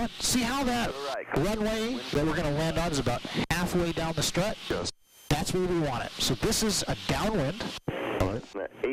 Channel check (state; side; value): identical; both; correlation 1.00